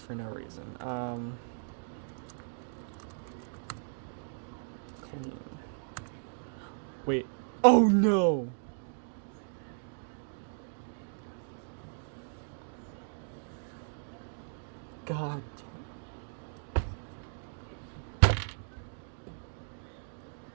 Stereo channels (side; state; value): left; silent; digital silence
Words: no reason. Clean. Wait. Oh no! God damn.